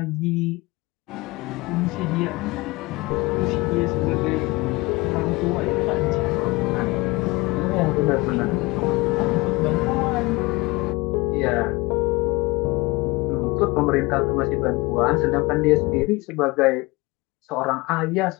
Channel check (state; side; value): quieter; right; 23.2 dB